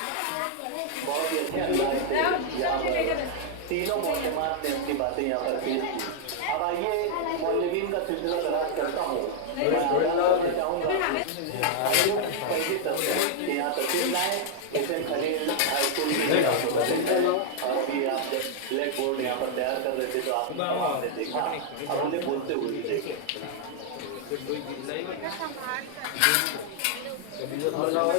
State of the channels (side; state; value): both; different; correlation -0.01